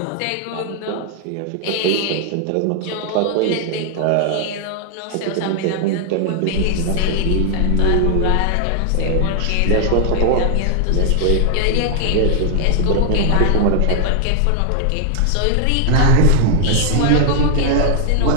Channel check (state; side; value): different; both; correlation 0.00